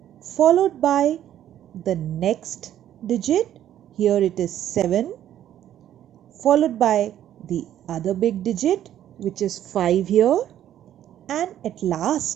followed by the next digit. Here it is 7, followed by the other big digit, which is 5 here, and at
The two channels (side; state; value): left; quieter; 11.4 dB